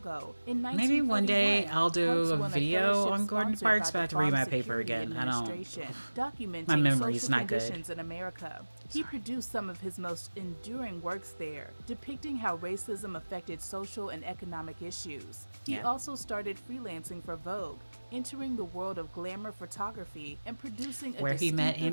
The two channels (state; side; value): inverted; both; correlation -1.00